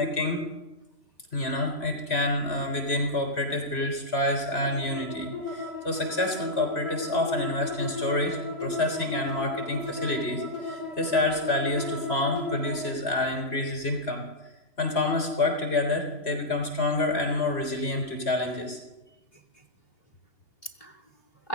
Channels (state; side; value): late; right; 3.0 ms